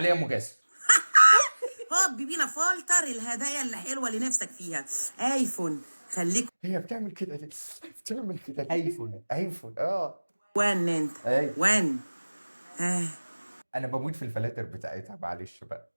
مجاسر. هوب بينا فلتر الهدايا اللي حلوه اللي نفسك فيها. ايفون خليك هي بتعمل كده ليه؟ بتعمل كده ليه؟ ايفون. ايفون وان انت ايوه. وان. انا بموت في الفلاتر بتاعتها، معلش بقى.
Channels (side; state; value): both; inverted; correlation -1.00